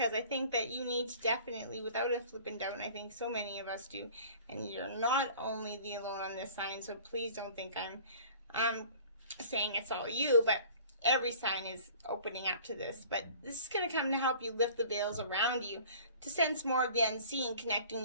I think that you need to definitely, without a flipping doubt, and I think so many of us do, and you're not only the alone on this sign, so please don't think I'm saying it's all you, but every sign is opening up to this. But this is going to come to help you lift the veils around you, to sense more of the unseen, connecting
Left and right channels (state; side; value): inverted; both; correlation -0.47